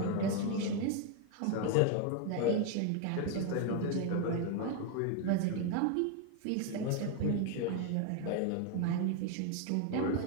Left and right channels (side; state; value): both; different; correlation 0.01